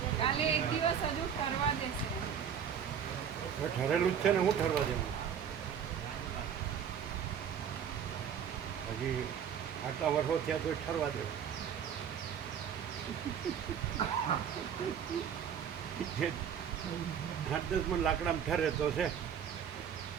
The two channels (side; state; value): left; quieter; 8.1 dB